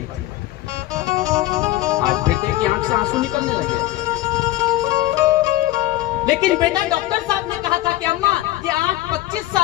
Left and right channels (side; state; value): right; quieter; 15.9 dB